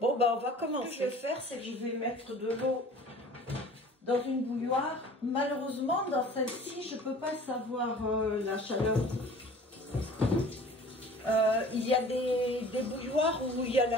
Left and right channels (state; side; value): normal; both; correlation 0.46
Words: bah on va commencer. Ce que je vais faire, c'est que je vais mettre de l'eau dans une bouilloire. Malheureusement, dans celle-ci, je peux pas savoir la chaleur. Il y a des bouilloires où il y a